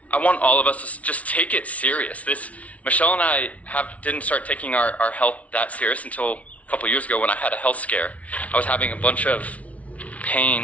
I want all of us to just take it serious. Michelle and I didn't start taking our health that serious until a couple years ago when I had a health scare. I was having a bunch of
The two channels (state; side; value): late; right; 0.067 ms